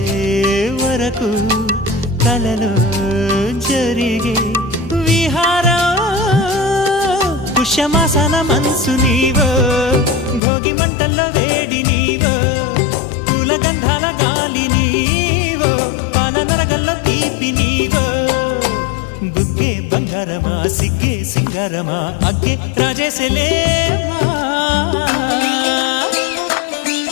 వరకు కలలో జరిగే విహారం పుష్యమాసన మనసు నీవో భోగి మంటల్లో వేడి నీవో పూల గంధాల గాలి నీవో పాల నరగల్లో తీపి నీవో బుగ్గే బంగారమా సిగ్గే సింగారమా అగ్గే రాజేసలేమా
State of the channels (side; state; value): right; drops out; at 10.4 s